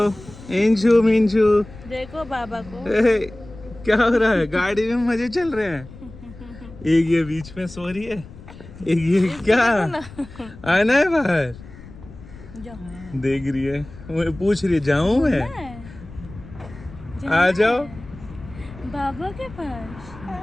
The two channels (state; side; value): noise; left; rumble, 17 dB below the sound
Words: इंशु मिंशु। देखो बाबा को, क्या हो रहा है? गाड़ी में मजे चल रहे हैं। एक ये बीच में सो रही है, एक ये क्या आना है बाहर, देख रही है, मुझे पूछ रही है जाऊं मैं? आ जाओ बाबा के